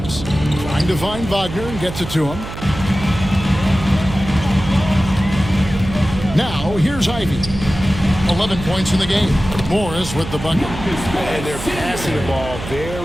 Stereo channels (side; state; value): right; noise; hum, 10 dB below the sound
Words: trying to find Wagner and gets it to him. Now, here's Ivey. 11 points in the game. Morris with the bucket. And they're passing the ball